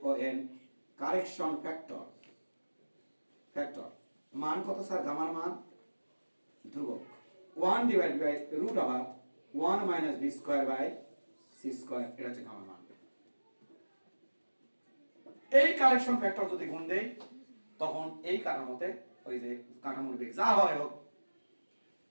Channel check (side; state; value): both; inverted; correlation -1.00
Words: O N, correction factor. Factor মান কত স্যার? গামার মান ধ্রুবক 1 divide by root over 1 minus b square by c square, এটা হচ্ছে গামার মান। এই কারেকশন ফ্যাক্টর যদি গুণ দেই তখন এই কাঠামোতে ওই যে কাঠামোর বেগ যা হয় হোক